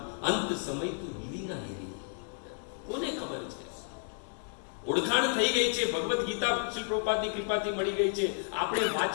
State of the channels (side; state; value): right; silent; digital silence